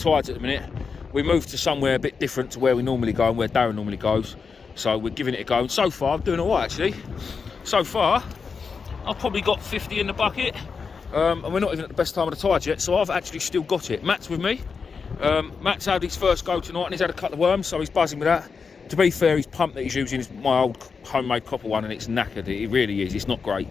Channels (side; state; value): right; quieter; 5.4 dB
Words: at the minute. We moved to somewhere a bit different to where we normally go and where Darren normally goes, so we're giving it a go. And so far I'm doing all right actually. So far I've probably got 50 in the bucket. And we're not even at the best time of the tide yet, so I've actually still got it. Matt's with me. Matt's had his first go tonight and he's had a couple of worms, so he's buzzing with that. To be fair, his pump that he's using is my old homemade copper one and it's knackered. It really is. It's not great,